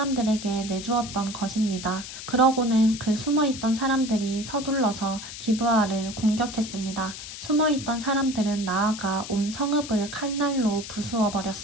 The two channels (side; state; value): left; noise; hiss, 11 dB below the sound